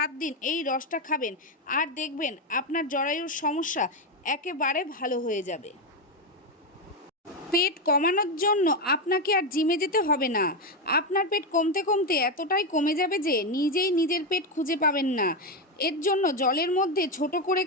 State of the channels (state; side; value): normal; both; correlation 0.09